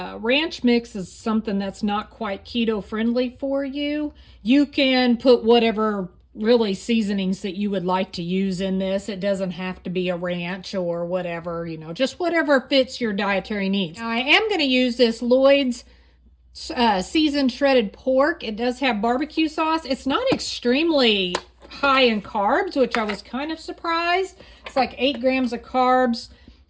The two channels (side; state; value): both; identical; correlation 1.00